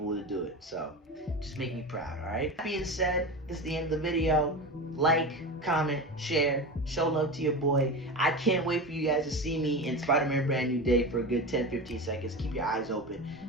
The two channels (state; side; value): normal; both; correlation 0.26